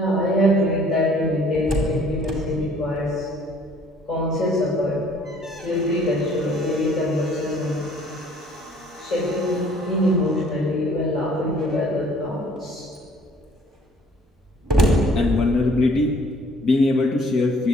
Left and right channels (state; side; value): normal; both; correlation 0.57